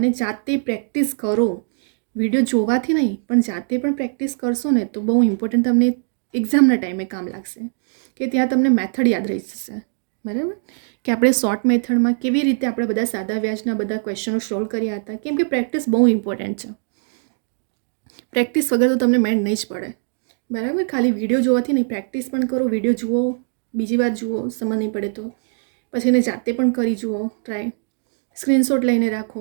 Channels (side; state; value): left; silent; digital silence